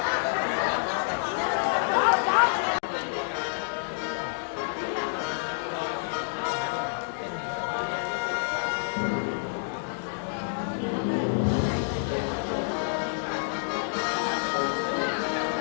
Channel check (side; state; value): right; silent; digital silence